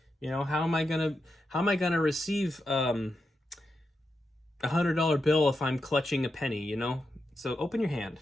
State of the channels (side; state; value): both; normal; correlation 0.86